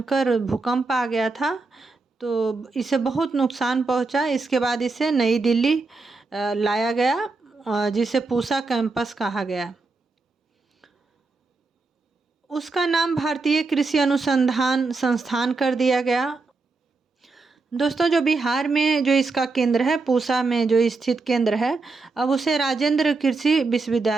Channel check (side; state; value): left; quieter; 3.8 dB